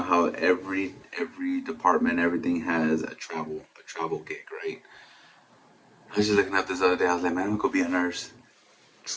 how every department, everything has a travel gig, right? I was just looking up this other day. I was like, man, I'm gonna go be a nurse.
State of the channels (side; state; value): both; identical; correlation 1.00